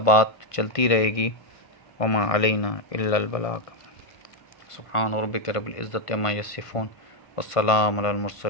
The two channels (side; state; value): right; late; 1.5 ms